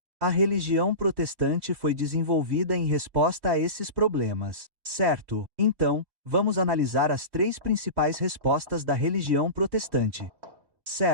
A religião protestante foi desenvolvida em resposta a esses problemas. Certo? Então, vamos analisar as três principais respostas da religião protestante.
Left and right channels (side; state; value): left; late; 3.2 ms